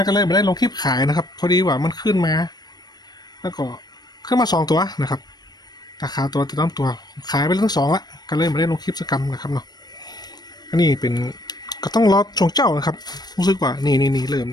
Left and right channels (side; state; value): right; late; 0.19 ms